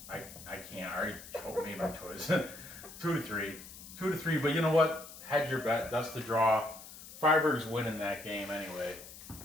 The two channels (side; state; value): left; noise; hiss, 15 dB below the sound